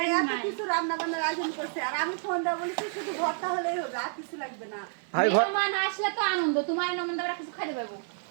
এত নাই। কিছু রান্না বান্নার আয়োজন করছে আর আমি ফোন দেওয়া বলেছি শুধু ভর্তা হলেই হবে আর কিছু লাগবে না ভাই মেহমান আসলে তো আনন্দ তোমার নমন আমরা কিছু খাইতে পারবো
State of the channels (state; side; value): silent; left; 58 dB below the other